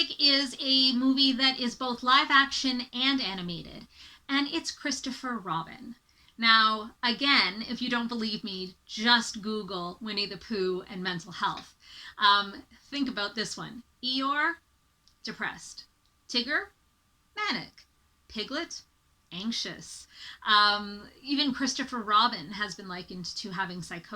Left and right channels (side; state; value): both; identical; correlation 1.00